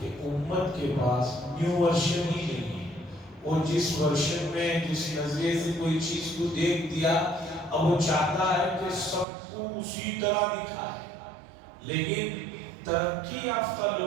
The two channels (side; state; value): left; drops out; at 9.2 s